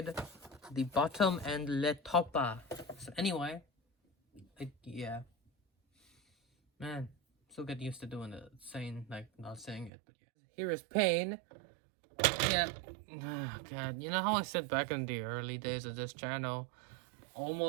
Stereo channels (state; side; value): drops out; left; at 9.9 s